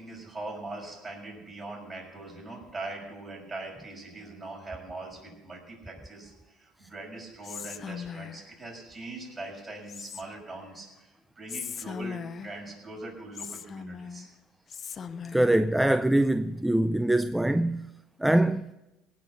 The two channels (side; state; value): both; normal; correlation 0.95